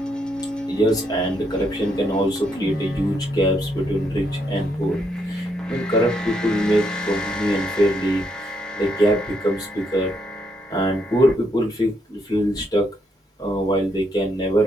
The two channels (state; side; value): normal; both; correlation 0.76